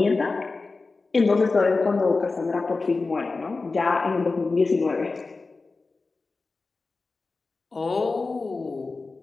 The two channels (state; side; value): quieter; right; 3.9 dB